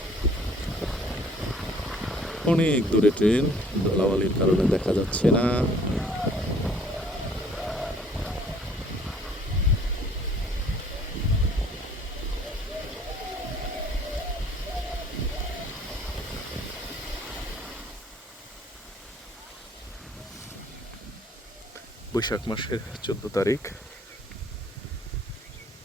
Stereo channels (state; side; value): normal; both; correlation 0.57